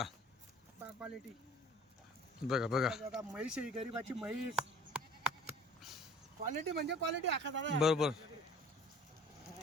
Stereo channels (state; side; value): normal; both; correlation 0.48